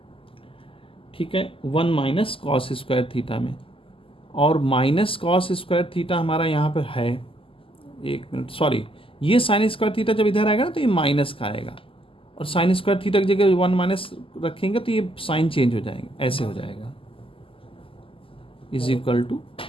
ठीक है, 1 माइनस कॉस स्क्वायर थीटा में, और माइनस कॉस स्क्वायर थीटा हमारा यहाँ पर है, एक मिनट सॉरी, ये साइन स्क्वायर थीटा जब इधर आएगा ना तो ये माइनस का आएगा, और साइन स्क्वायर थीटा की जगह 1 माइनस रखेंगे तो ये साइन चेंज हो जाएंगे, ऐसे हो जाएगा इज इक्वल टू,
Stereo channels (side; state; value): right; late; 0.26 ms